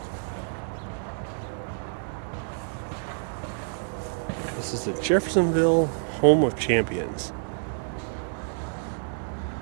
This is the Jeffersonville Home of Champions.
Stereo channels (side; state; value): left; silent; digital silence